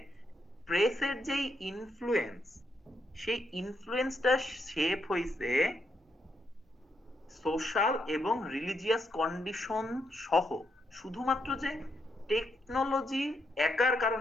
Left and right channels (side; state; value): both; normal; correlation 0.78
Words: প্রেসের যেই ইনফ্লুয়েন্স, সেই ইনফ্লুয়েন্সটা শেপ হইছে সোশ্যাল এবং রিলিজিয়াস কন্ডিশন সহ। শুধুমাত্র যে টেকনোলজি একার